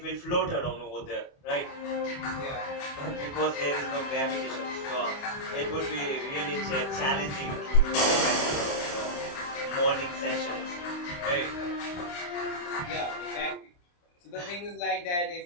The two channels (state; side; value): late; right; 28 ms